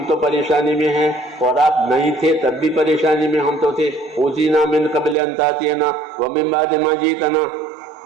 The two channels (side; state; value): left; drops out; at 5.2 s